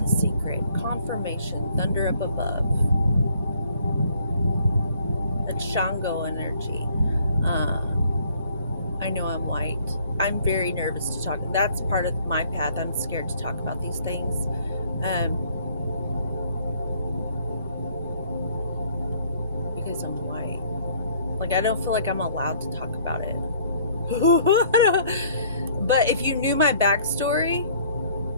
secret. Confirmation, thunder up above. That's Shango energy. I know I'm white. I'm very nervous to talk. That's part of my path. I'm scared to talk about these things. Because I'm white. Like, I don't feel like I'm allowed to talk about it. But if you knew my backstory,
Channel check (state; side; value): inverted; both; correlation -0.60